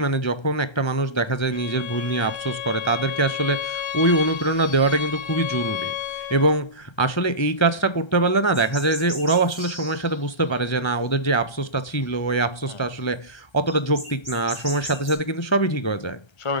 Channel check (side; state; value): right; late; 1.3 ms